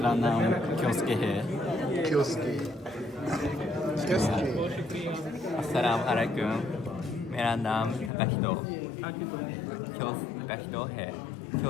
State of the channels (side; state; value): right; drops out; at 8.1 s